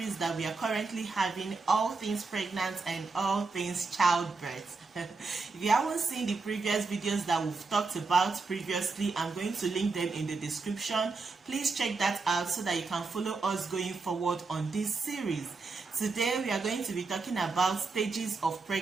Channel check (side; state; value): left; quieter; 4.2 dB